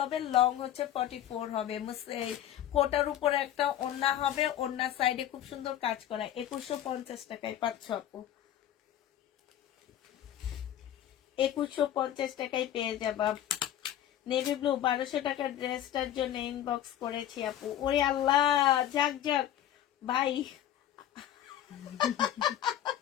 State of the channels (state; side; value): quieter; right; 11.5 dB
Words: লং হচ্ছে 44 হবে। এই কোটার উপরে একটা ওড়না হবে, ওড়নার সাইডে খুব সুন্দর কাজ করা। 2150 টাকায় পাচ্ছ আপু, 2150 টাকায় পেয়ে যাবা। নেভি ব্লু 1200 টাকার ড্রেসটার জন্য ইনবক্স করেছি আপু। ওরে আল্লাহ, যাক যাক ভাই,